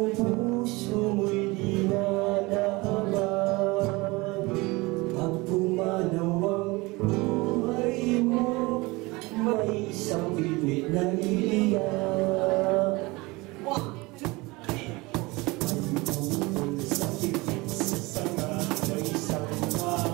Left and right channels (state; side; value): quieter; left; 23.5 dB